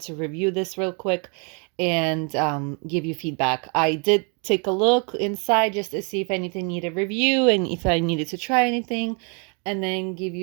to review this real quick and give you feedback. I did take a look inside just to see if anything needed review and if I needed to try anything, and then give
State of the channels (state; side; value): quieter; left; 35.8 dB